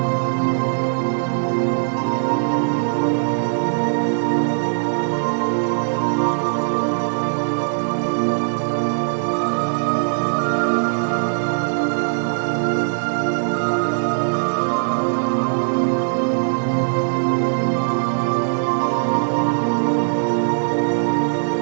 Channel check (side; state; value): left; silent; 66 dB below the other